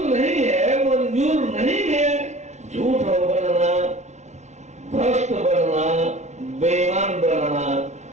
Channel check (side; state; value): left; late; 0.33 ms